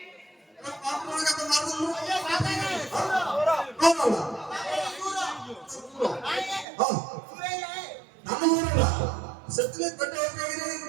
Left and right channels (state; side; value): drops out; left; at 6.7 s